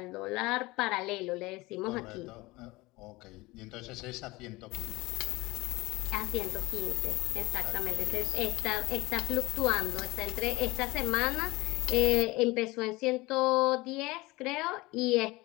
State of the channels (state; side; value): quieter; right; 21.6 dB